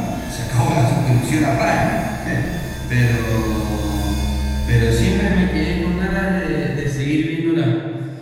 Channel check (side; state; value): both; identical; correlation 1.00